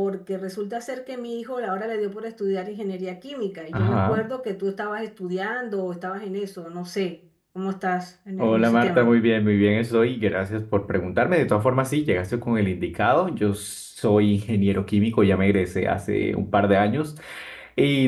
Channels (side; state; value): both; identical; correlation 1.00